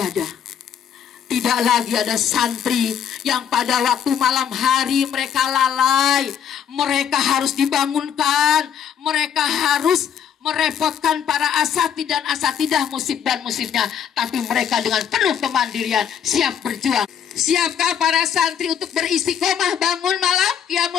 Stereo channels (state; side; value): quieter; right; 8.6 dB